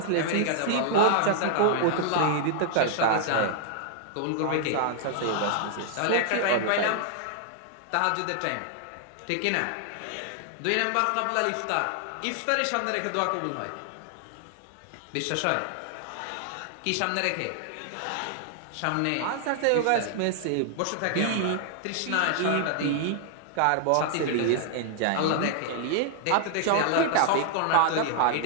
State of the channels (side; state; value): both; different; correlation 0.00